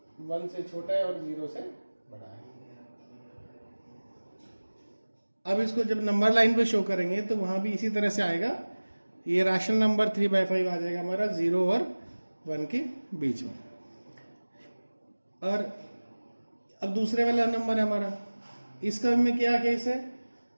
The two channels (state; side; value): inverted; both; correlation -1.00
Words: 1 से छोटा है और 0 से बड़ा है। अब इसको जब नंबर लाइन पे शो करेंगे तो वहाँ भी इसी तरह से आएगा। ये रैशनल नंबर 3/5 आ जाएगा हमारा 0 और 1 के बीच में। और अब दूसरे वाला नंबर है हमारा, इसका में क्या केस है?